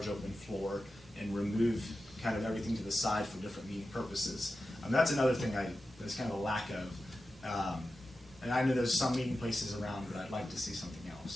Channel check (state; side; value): normal; both; correlation 0.92